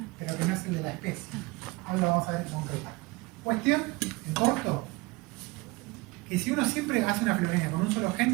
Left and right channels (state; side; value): quieter; left; 24.1 dB